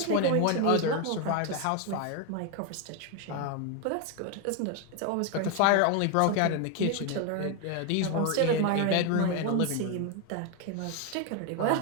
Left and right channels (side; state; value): both; different; correlation 0.01